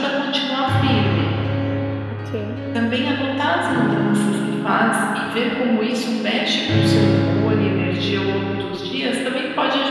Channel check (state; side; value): identical; both; correlation 1.00